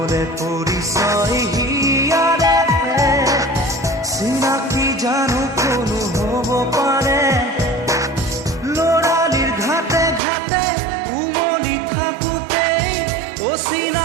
নহ'লে পৰিচয় হিয়াৰে চিনাকি জানো কোনো হ'ব পাৰে ল'ৰালিৰ ঘাটে ঘাটে উমলি থাকোঁতেই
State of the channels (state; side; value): drops out; left; at 10.2 s